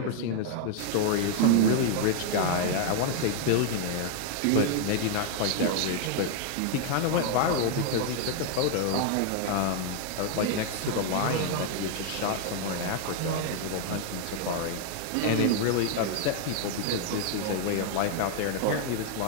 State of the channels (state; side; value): different; both; correlation 0.00